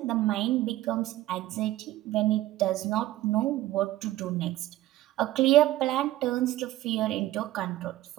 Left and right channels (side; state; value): left; quieter; 15.5 dB